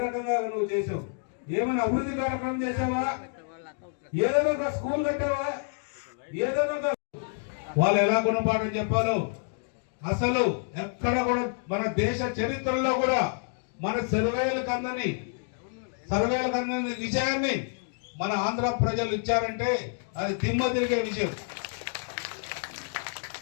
రకంగా నువ్వు చేసావు? ఏమైనా అభివృద్ధి కార్యక్రమం చేసావా? ఏదైనా ఒక స్కూల్ కట్టావా? ఏదైనా వాళ్ళు ఎలా గుణపాఠం చెప్పాలో అసలు ఎక్కడ కూడా మన దేశ చరిత్రలో కూడా మన సర్వేలకు అందని విషయాన్ని మన ఆంధ్ర ప్రజలు ఇచ్చారంటే అది దిమ్మ తిరిగే విషయం.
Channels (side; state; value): right; silent; 59 dB below the other